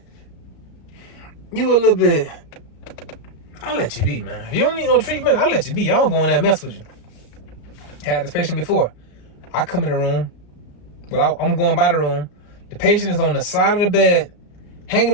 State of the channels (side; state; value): right; late; 34 ms